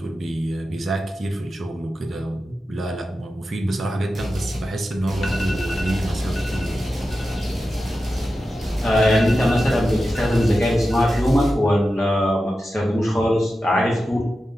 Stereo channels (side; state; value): both; normal; correlation 0.92